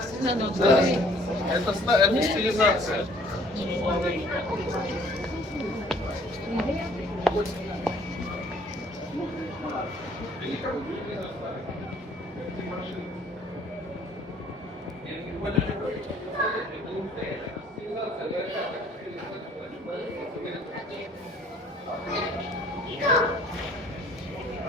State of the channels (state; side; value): normal; both; correlation 0.57